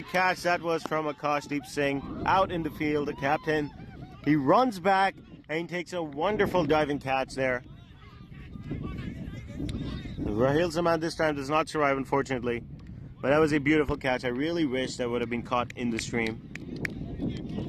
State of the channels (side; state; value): both; identical; correlation 1.00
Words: catch that was from Akashdeep Singh out in the field, the captain. He runs back and he takes a wonderful diving catch there. Raheel Zaman this time does not survive, unfortunately. But that was a beautiful catch. I really wish that would have been caught in the stream.